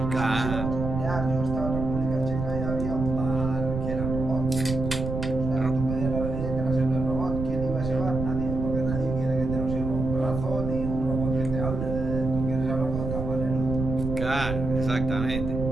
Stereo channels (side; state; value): right; noise; rumble, 4 dB below the sound